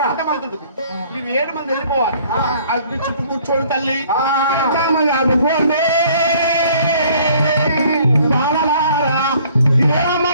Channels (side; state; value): both; inverted; correlation -0.57